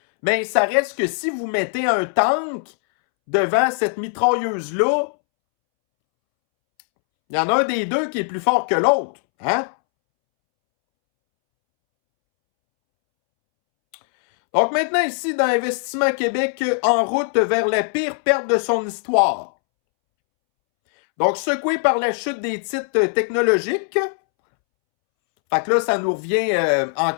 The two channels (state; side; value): silent; right; 65 dB below the other